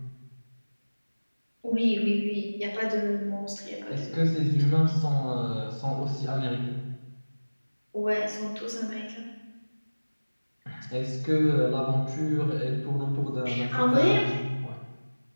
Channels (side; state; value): both; inverted; correlation -1.00